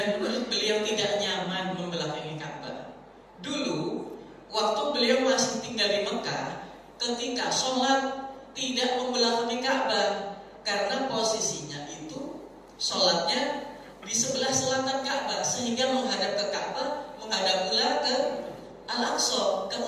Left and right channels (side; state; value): both; identical; correlation 1.00